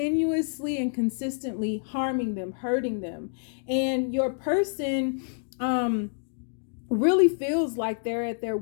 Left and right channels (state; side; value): silent; right; digital silence